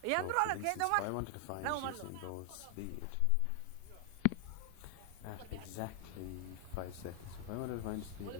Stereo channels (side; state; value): both; different; correlation 0.00